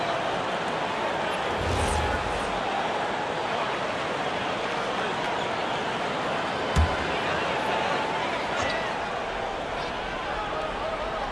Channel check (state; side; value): identical; both; correlation 1.00